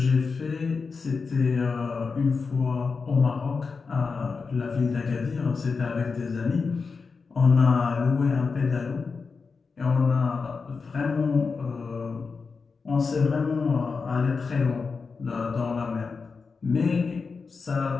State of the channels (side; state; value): right; quieter; 4.8 dB